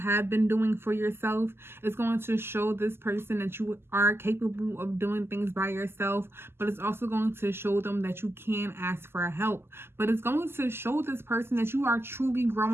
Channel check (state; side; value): late; left; 0.12 ms